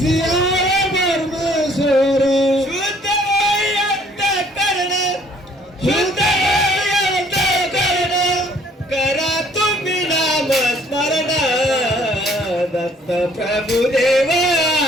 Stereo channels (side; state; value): both; normal; correlation 0.60